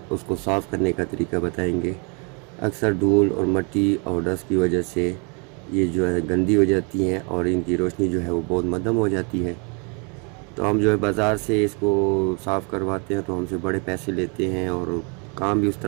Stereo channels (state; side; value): quieter; left; 34.7 dB